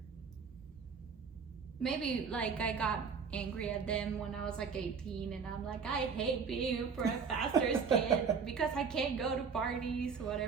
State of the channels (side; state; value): left; quieter; 5.9 dB